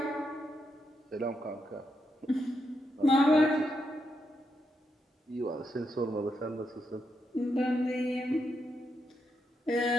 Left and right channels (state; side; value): normal; both; correlation 0.82